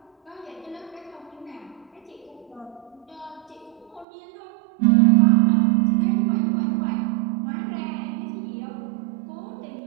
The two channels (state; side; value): drops out; left; at 4.0 s